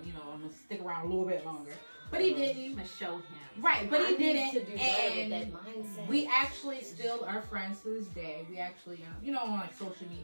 You know, I'm going to stick around a little bit longer. But he didn't. I'm going to show him. Right, but he I need didn't. to do better with And that mindset. we actually still are friends to this day. We actually, you know, on like social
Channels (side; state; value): both; inverted; correlation -1.00